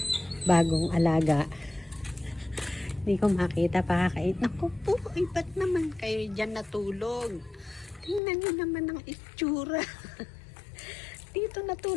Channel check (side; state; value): right; drops out; at 8.2 s